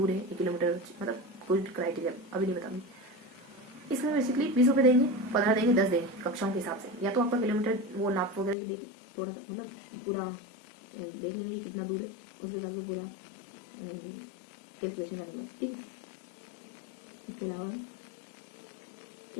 है 1 किलोमीटर, मतलब कुछ क्राइटेरिया अभी नहीं बताऊंगी, इसमें बेसिकली 20 रुपये देंगे, 15 देंगे, 10 देंगे कक्षाओं के हिसाब से, या तो आपका किलोमीटर वो नाप वगैरह देखें थोड़ा सा, मतलब पूरा देख लेंगे कितना दूर है, उसके हिसाब से पूरा कैलकुलेशन करने के बाद, ठीक है। इसके अलावा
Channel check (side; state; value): right; drops out; at 8.6 s